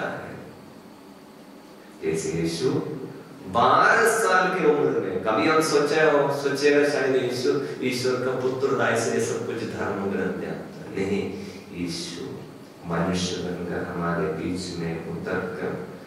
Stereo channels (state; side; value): identical; both; correlation 1.00